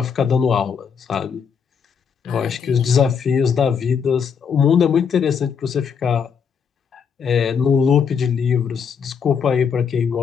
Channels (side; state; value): right; quieter; 6.6 dB